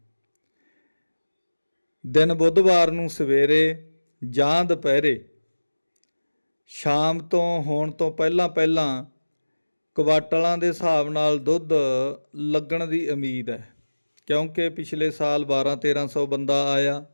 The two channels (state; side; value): inverted; both; correlation -1.00